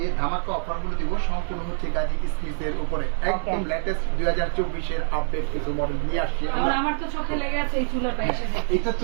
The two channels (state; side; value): silent; left; digital silence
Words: ধামাকা অফারগুলো দিব সম্পূর্ণ হচ্ছে গাজী স্মিথের উপরে। একদম লেটেস্ট 2024 এর আপডেট কিছু মডেল নিয়ে আসছি আমরা। আমার তো চোখে লেগে আছে এই চুলাটা এসে দেখে। এটা